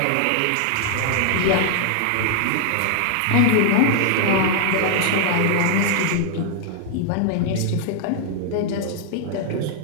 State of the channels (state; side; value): different; both; correlation 0.00